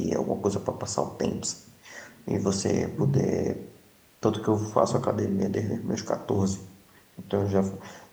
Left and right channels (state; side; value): identical; both; correlation 1.00